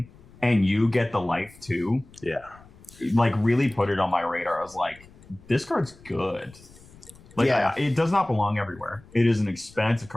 and you get the life too. Yeah. Like really put it on my radar. I was like, this card's good. Like, Yeah. it does not belong everywhere. It is an expensive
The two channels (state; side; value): noise; left; rumble, 23 dB below the sound